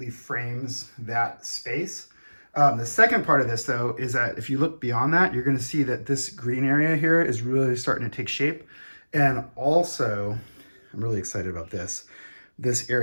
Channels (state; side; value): inverted; both; correlation -1.00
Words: frames that space. The second part of this, though, is that if you look beyond that, you're going to see that this green area here is really starting to take shape. And also, I'm really excited about this